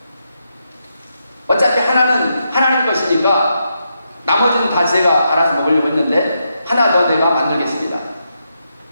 어차피 하나는 하나님 것이니까 나머지는 다 제가 알아서 먹으려고 했는데 하나 더 내가 만들겠습니다.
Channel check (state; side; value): inverted; both; correlation -0.83